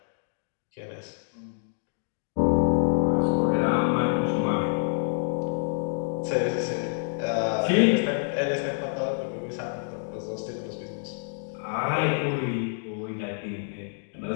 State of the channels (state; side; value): silent; right; 60 dB below the other